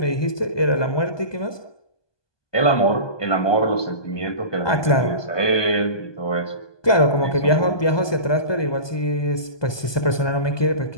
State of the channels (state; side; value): late; right; 1.2 ms